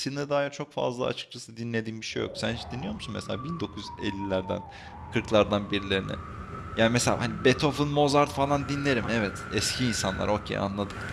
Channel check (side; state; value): both; identical; correlation 1.00